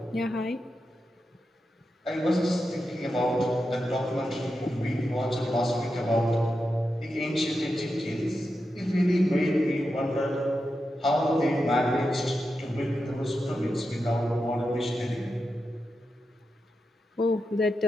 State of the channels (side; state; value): both; normal; correlation 0.89